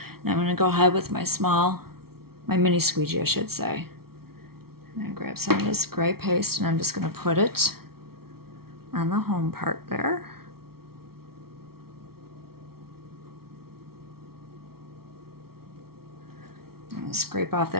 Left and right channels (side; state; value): left; late; 0.94 ms